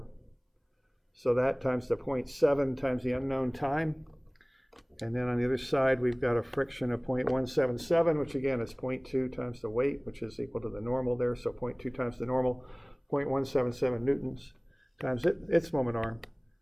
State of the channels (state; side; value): identical; both; correlation 1.00